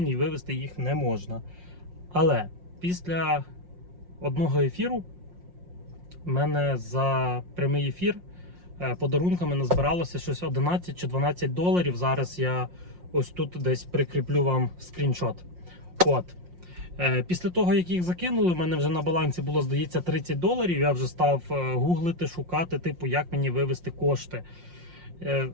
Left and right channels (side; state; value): left; late; 5.6 ms